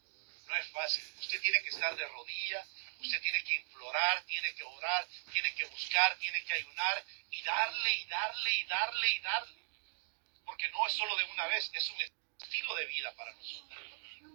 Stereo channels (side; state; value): left; silent; digital silence